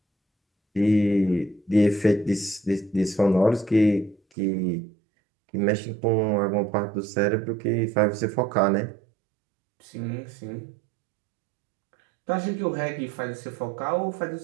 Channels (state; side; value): drops out; left; at 4.2 s